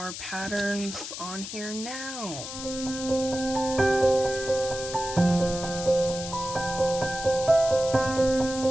patterns on here now.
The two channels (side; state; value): left; noise; hiss, 9 dB below the sound